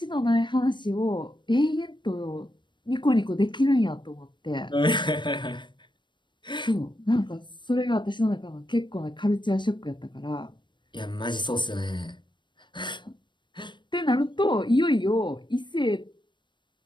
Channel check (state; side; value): late; right; 0.22 ms